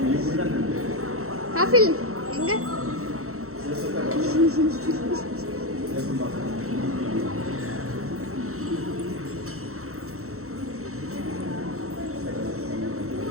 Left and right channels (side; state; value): left; late; 0.63 ms